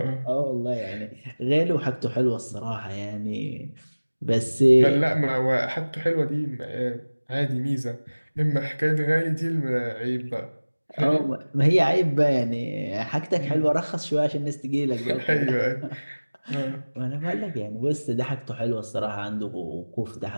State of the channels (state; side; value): inverted; both; correlation -1.00